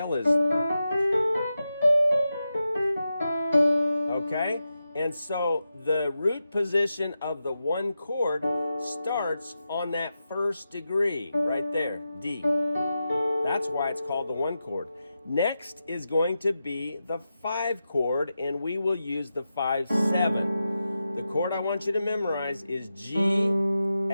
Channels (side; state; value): both; inverted; correlation -0.90